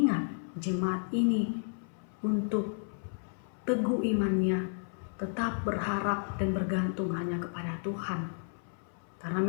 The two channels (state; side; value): silent; right; 56 dB below the other